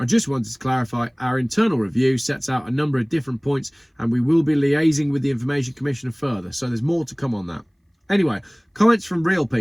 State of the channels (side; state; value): both; identical; correlation 1.00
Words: just wanted to clarify our internal review sets out a number of different points and we will be liaising with the Information Commissioner further. So there's more to come on that. Anyway, comments from real